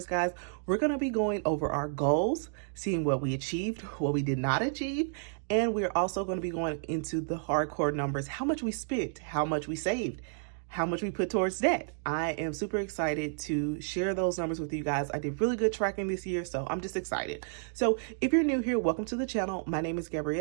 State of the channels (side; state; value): left; silent; digital silence